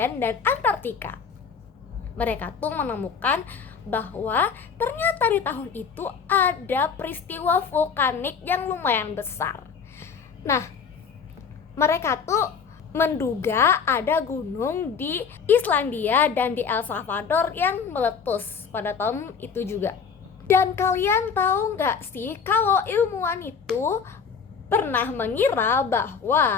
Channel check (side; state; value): right; quieter; 6.2 dB